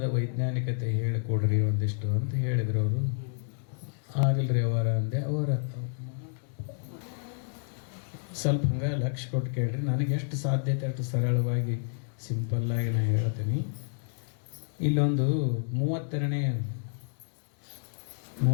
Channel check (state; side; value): silent; right; digital silence